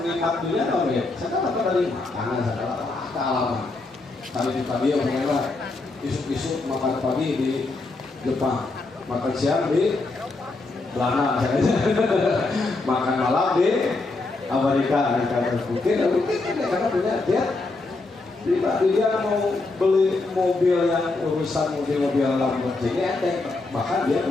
nikmat dunia tau ya, saya apa dari makanan, saya kealaman. Tadi yang mengelak isuk-isuk makan pagi di Jepang, makan siang di Belanda, makan malam di Amerika. Mungkin karena punya dia mau beli mobil yang urusan mobil Lamborghini enteng, bahkan dia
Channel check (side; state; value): right; quieter; 3.4 dB